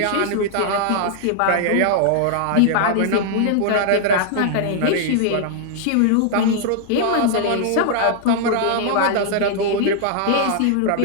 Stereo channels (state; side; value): different; both; correlation -0.01